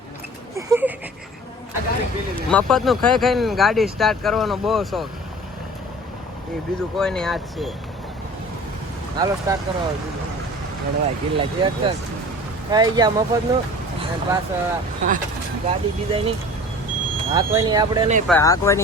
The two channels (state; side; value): normal; both; correlation 0.43